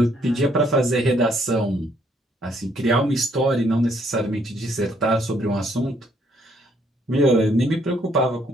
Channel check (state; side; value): normal; both; correlation 0.68